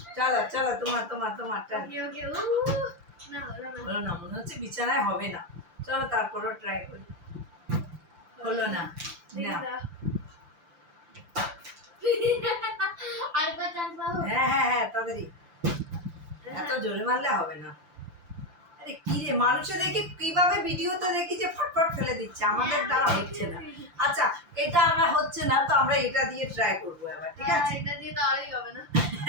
চলো চলো তোমার তোমার তোমার টান। ওকে ওকে না হলো না হলো না, মনে হচ্ছে বিছানায় হবে না। চলো তারপরও ট্রাই করি। হলো না, না আর কত চান্স পাবো হ্যাঁ হ্যাঁ হ্যাঁ তাড়াতাড়ি, এত জোরে মারলে হবে না। আরে কি রে, মানুষে দেখি কিভাবে ভিডিওতে দেখি যে ফটফট ফেলে দিচ্ছে, আমাদের দ্বারা হচ্ছে না। আচ্ছা এটা আমরা হচ্ছে না, তো আমরা এটা দিয়ে ট্রাই করবো এবার, ঠিক আছে? এটা দিয়ে তো আরই হবে না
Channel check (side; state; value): left; late; 5.8 ms